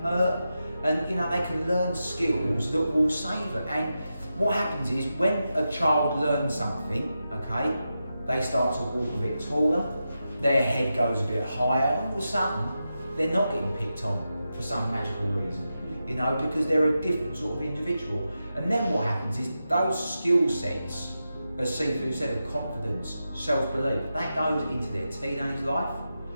hurt, and they can learn skills that will save them. And what happens is, when a child learns something, okay, they start to walk a bit taller, their head goes a bit higher, and all of a sudden, they're not getting picked on for some magical reason. Because they're a different sort of individual. And then what happens is, those skill sets, as Sifu said, of confidence, self-belief, that goes into their teenage life,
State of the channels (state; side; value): inverted; both; correlation -0.90